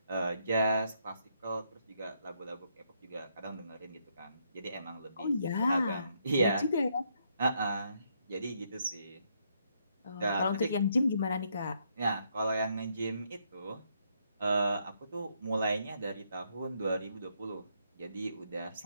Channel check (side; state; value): both; inverted; correlation -0.74